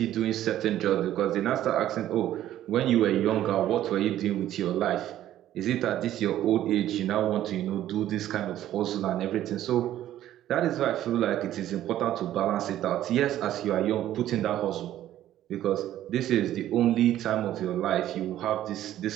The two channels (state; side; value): quieter; left; 12.6 dB